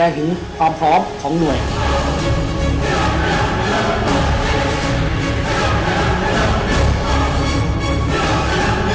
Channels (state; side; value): identical; both; correlation 1.00